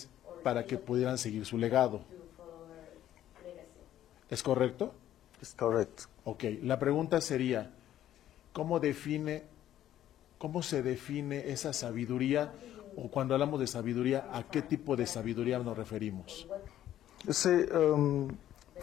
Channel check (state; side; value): quieter; right; 12.1 dB